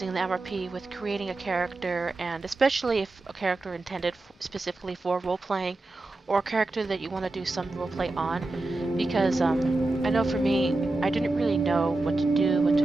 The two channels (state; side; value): quieter; left; 3.0 dB